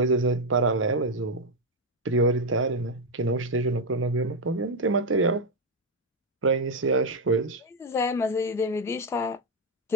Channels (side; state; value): both; normal; correlation 0.03